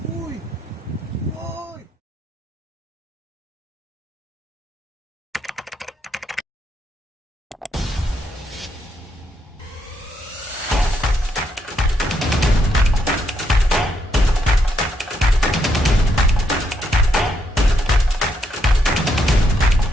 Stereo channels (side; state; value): both; normal; correlation 0.77